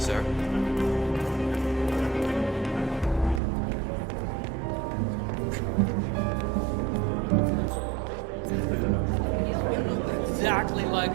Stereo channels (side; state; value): left; drops out; at 3.4 s